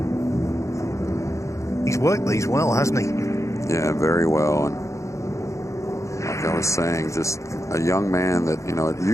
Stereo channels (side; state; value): right; late; 0.15 ms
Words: He's worked these well, hasn't he? Yeah, very well. And like I was saying, just a young man that, you know, it